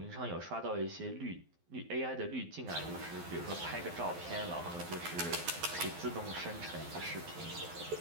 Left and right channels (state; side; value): late; left; 12 ms